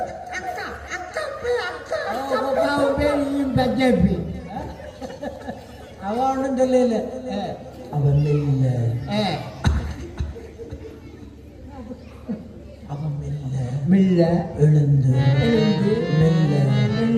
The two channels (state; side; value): identical; both; correlation 1.00